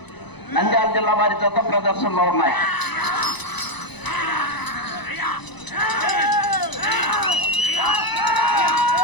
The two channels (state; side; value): late; right; 1.0 ms